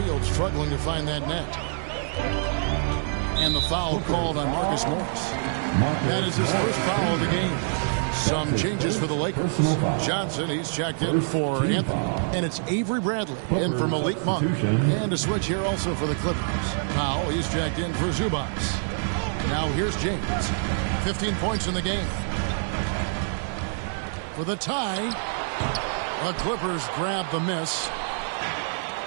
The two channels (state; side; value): silent; left; digital silence